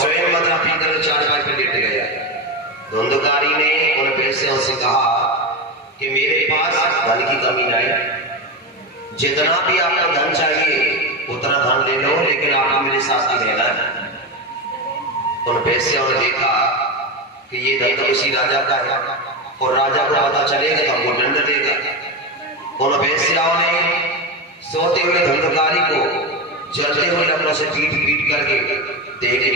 मदरा पीकर चारपाई पर लेट गया। धुंधकारी ने उन बेसियों से कहा कि मेरे पास धन की कमी नहीं, जितना भी आपको धन चाहिए उतना धन ले लो, लेकिन आपको मेरे साथ ही रहना है। उन बेसियों ने देखा कि ये धन तो किसी राजा का है और राजा को पता चलेगा तो हमको दंड देगा। उन बेसियों ने सोते हुए धुंधकारी को जलते हुए लकड़ों से पीट पीट करके देह की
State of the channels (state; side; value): normal; both; correlation 0.16